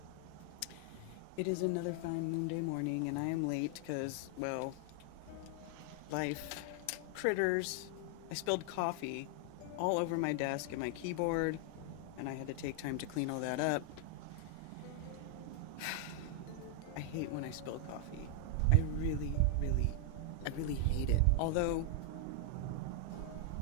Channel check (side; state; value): both; different; correlation 0.00